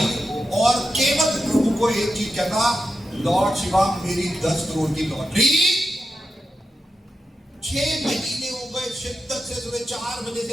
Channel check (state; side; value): normal; both; correlation 0.88